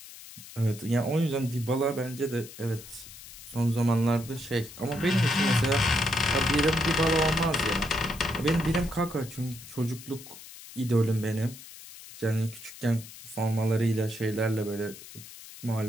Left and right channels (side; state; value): left; noise; hiss, 16 dB below the sound